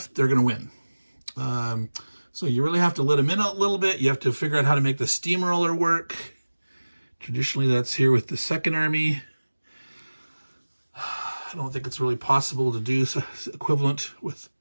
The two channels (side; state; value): both; inverted; correlation -1.00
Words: they're going to win. So you really have to let them in a little bit. You have to figure out how to make the steamroller work. Traditionally, that's here with the Second Army. I don't think it's really possible to do equivalent